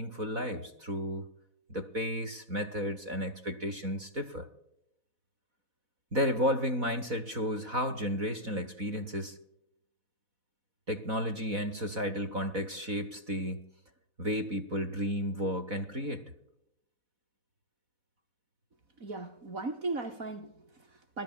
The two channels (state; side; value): late; left; 4.1 ms